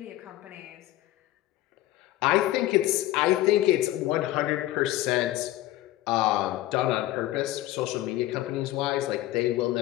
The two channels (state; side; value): quieter; right; 15.6 dB